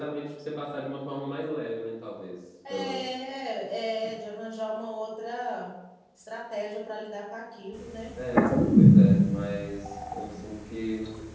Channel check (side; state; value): both; identical; correlation 1.00